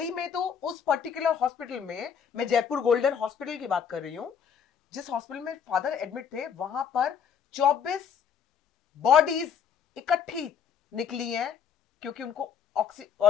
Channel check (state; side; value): quieter; right; 7.6 dB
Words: में तो उस पर्टिकुलर हॉस्पिटल में, मैं जयपुर गोल्डन हॉस्पिटल की बात कर रही हूं, जिस हॉस्पिटल में फादर एडमिट थे, वहां पर 24 बॉडीज इकट्ठी निकली हैं क्योंकि उनको